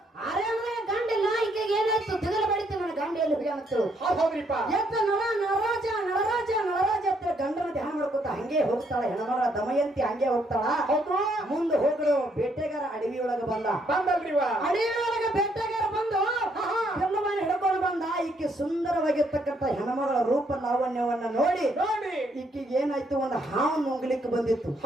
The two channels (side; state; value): both; normal; correlation 0.71